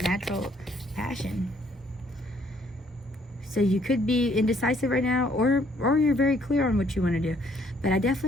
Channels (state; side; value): normal; both; correlation 0.65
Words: natural passion. So you could be indecisive right now, or you're very clear on what you want to do. But I